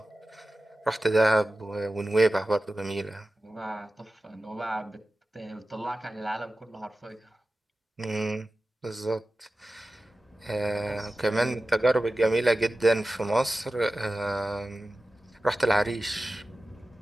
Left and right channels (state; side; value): normal; both; correlation 0.95